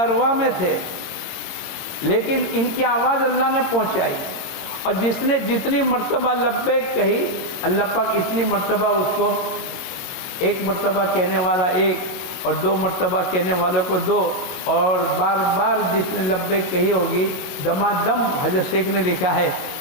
میں تھے, لیکن ان کی آواز اللہ نے پہنچائی. اور جس نے جتنی مرتبہ لبیک کہی اللہ پاک اتنی مرتبہ اس کو, ایک مرتبہ کہنے والا ایک اور 2 مرتبہ کہنے والے کو 2, اور بار بار جس نے لبیک کہی ہوگی دمادم. حضرت شیخ نے لکھا ہے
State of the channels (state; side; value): late; right; 21 ms